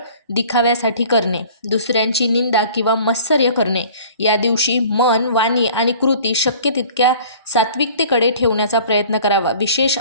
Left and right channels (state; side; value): inverted; both; correlation -0.48